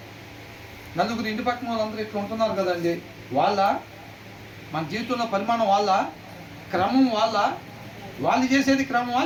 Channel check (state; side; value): identical; both; correlation 1.00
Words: నలుగురు ఇంటి పక్కన వాళ్ళందరూ ఇట్లా ఉంటున్నారు కదండి. మన జీవితంలో పరిమాణం క్రమం వాళ్ళు చేసేది క్రమమా